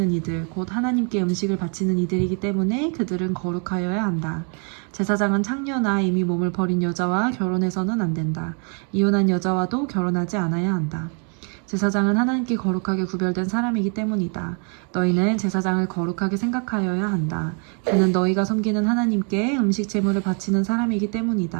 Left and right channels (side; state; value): left; quieter; 39.6 dB